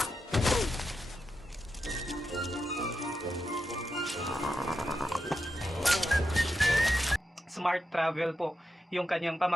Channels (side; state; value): both; normal; correlation 0.87